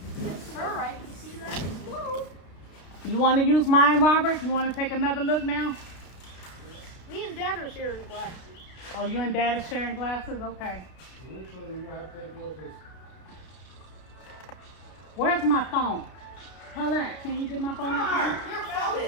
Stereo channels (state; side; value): late; right; 33 ms